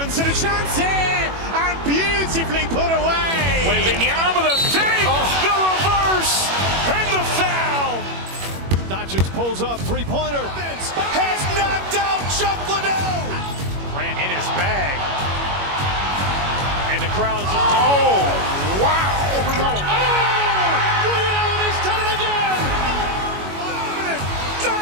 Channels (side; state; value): left; late; 21 ms